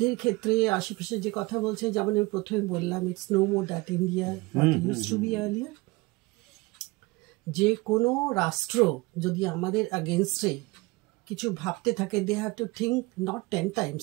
ক্ষেত্রে আশেপাশে যে কথা বলছে, যেমন আমি প্রথমে বললাম, it's no more that India what used to be earlier. যে কোনো রাষ্ট্র যদি আমাদের এগেইনস্টে কিছু ভাবতে থাকে, they have to think not 10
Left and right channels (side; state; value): left; quieter; 23.7 dB